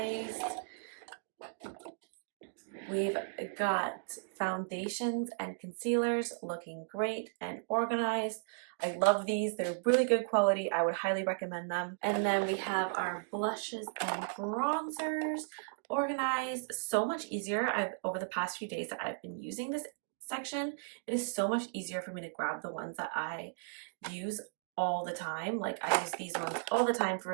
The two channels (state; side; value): silent; left; digital silence